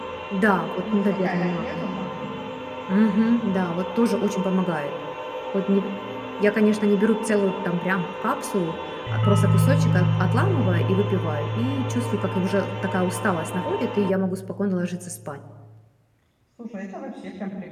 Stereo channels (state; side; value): identical; both; correlation 1.00